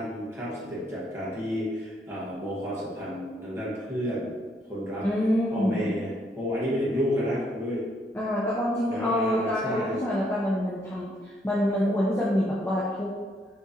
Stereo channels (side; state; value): both; normal; correlation 0.71